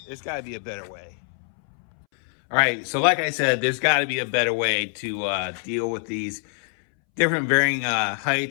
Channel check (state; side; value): silent; right; 62 dB below the other